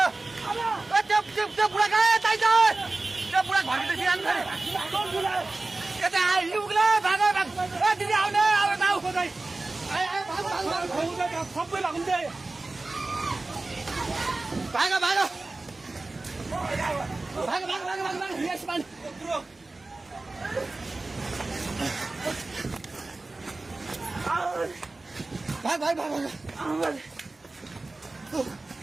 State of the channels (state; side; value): quieter; left; 3.2 dB